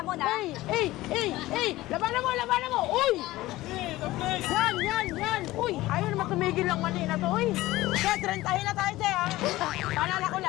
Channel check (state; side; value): quieter; right; 17.6 dB